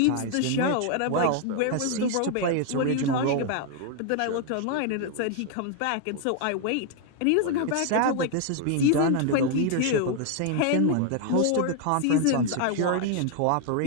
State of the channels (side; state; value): both; different; correlation 0.01